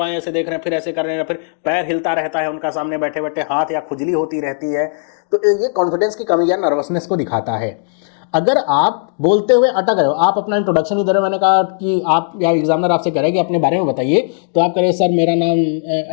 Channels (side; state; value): right; silent; digital silence